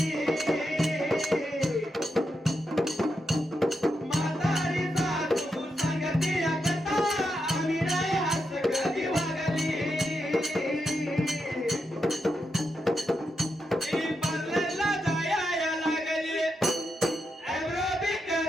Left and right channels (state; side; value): normal; both; correlation 0.85